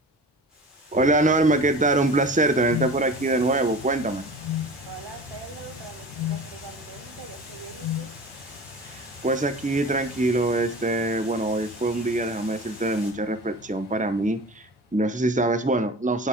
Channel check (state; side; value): normal; both; correlation 0.37